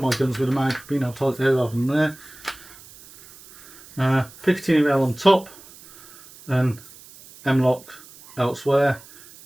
guns with a mag, being able to hold it there rather than there. Picatinny rail on top and M-lock elsewhere.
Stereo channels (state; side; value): noise; right; hiss, 21 dB below the sound